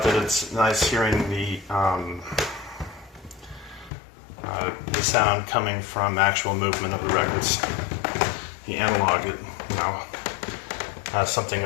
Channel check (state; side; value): drops out; right; at 3.9 s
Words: that it's nice hearing the sound coming from actual movement of the records. The analog, has something